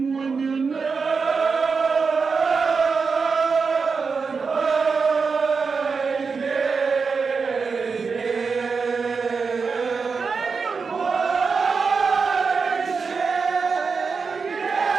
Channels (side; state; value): left; quieter; 5.1 dB